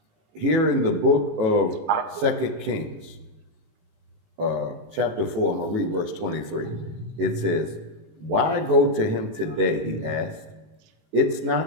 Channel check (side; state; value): left; late; 18 ms